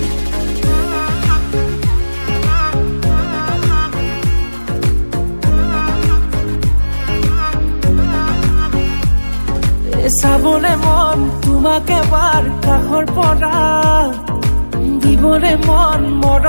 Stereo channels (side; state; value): both; inverted; correlation -1.00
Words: চাবলে মন তোমাক এবাৰ কাষৰ পৰা দিবলে মন